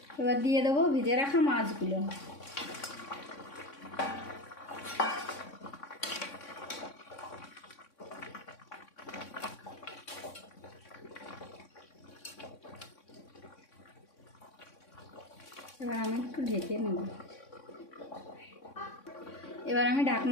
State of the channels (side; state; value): right; late; 3.6 ms